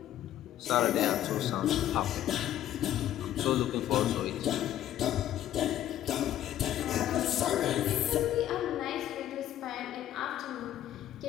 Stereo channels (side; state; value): right; quieter; 12.1 dB